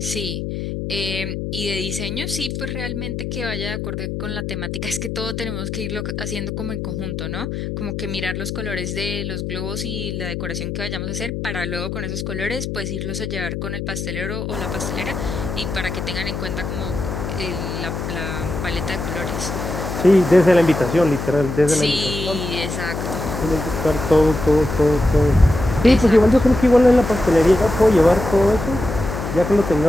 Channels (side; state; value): left; noise; hum, 5 dB below the sound